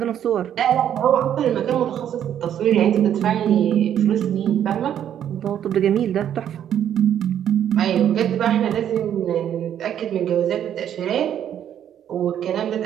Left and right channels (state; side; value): quieter; left; 10.0 dB